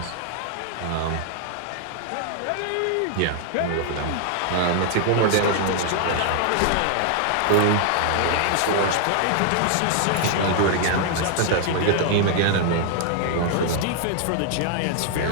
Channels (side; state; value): both; different; correlation 0.00